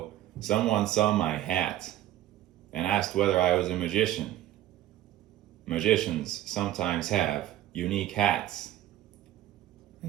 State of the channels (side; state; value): left; quieter; 13.5 dB